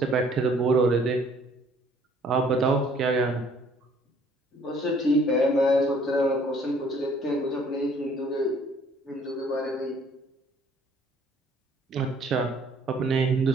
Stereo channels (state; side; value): normal; both; correlation 0.59